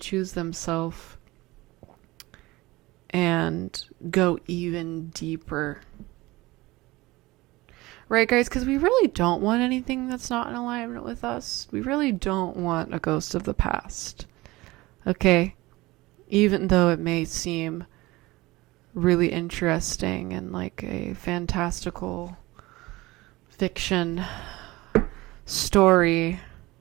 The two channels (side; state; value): left; quieter; 20.4 dB